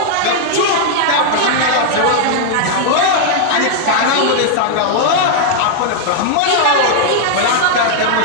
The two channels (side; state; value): both; different; correlation -0.01